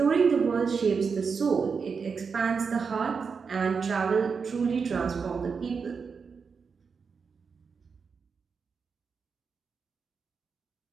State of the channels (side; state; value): left; quieter; 5.5 dB